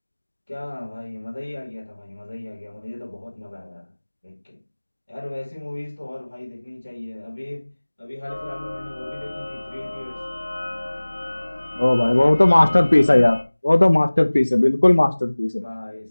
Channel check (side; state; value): both; inverted; correlation -1.00